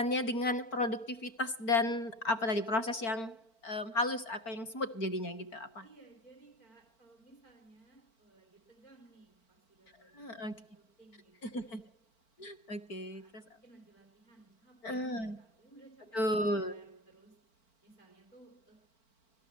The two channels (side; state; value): right; late; 4.4 ms